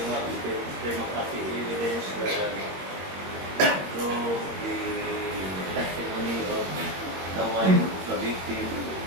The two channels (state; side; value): late; left; 21 ms